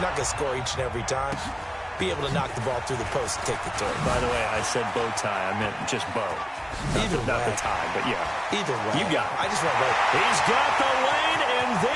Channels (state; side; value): identical; both; correlation 1.00